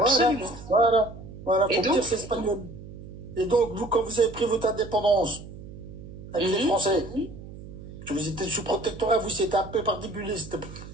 Voilà, faut me dire c'est espagnol. Et donc, vous, quand vous avez pris votre indépendance avec les Français, que vous étiez sous protectorat, vous, c'était un peu particulier.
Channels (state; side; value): noise; right; hum, 14 dB below the sound